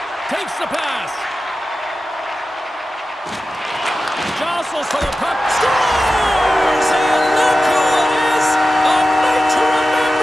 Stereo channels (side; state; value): both; normal; correlation 0.93